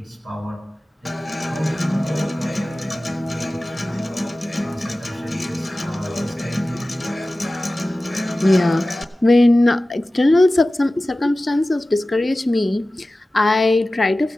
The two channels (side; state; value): both; normal; correlation 0.96